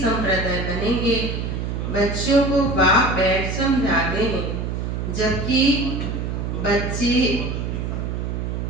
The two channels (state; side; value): noise; right; hum, 3 dB below the sound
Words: बनेंगे। बच्चों को बाप बैठ समझाते हैं, जबकि बच्चे